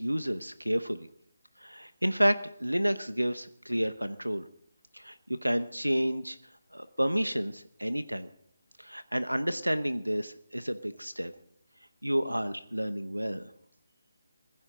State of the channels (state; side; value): inverted; both; correlation -0.99